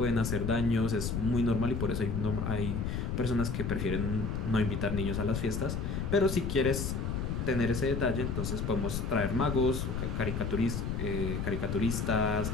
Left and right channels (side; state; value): left; noise; rumble, 1 dB below the sound